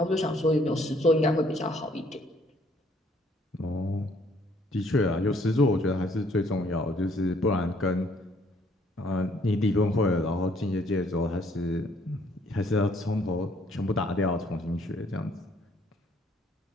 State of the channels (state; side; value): normal; both; correlation 0.64